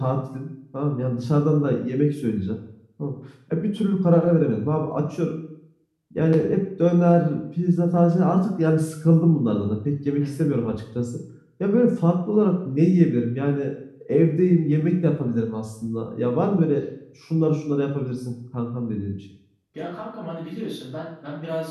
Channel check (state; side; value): identical; both; correlation 1.00